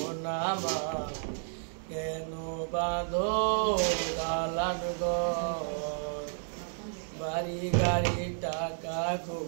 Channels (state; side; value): silent; left; digital silence